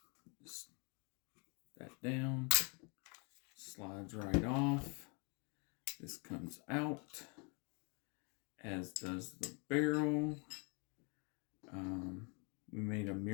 Just that down. Slides right off. This comes out, as does the barrel. We made a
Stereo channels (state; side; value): quieter; right; 33.9 dB